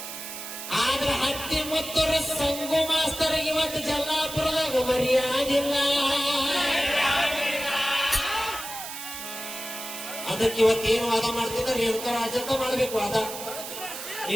ಆದ್ರ ಹತ್ತಿ ಮುತ್ತೂರ ಸಂಗು ಮಾಸ್ತರಿಗೆ ಇವತ್ತು ಜಲ್ಲಾಪುರದಾಗ ಮರ್ಯಾದಿಲ್ಲ. ಅದಕ್ಕೆ ಇವತ್ತೇನು ವಾದ ಮಾಡ್ತಿದ್ದ ರೇಣುಕರಾಜ ಅಂತ ಮಾಡಬೇಕು ವಾದ.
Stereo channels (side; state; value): right; noise; hiss, 9 dB below the sound